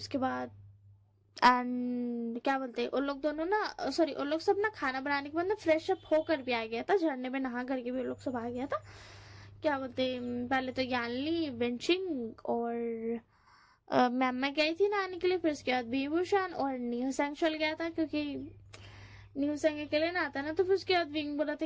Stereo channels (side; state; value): both; identical; correlation 1.00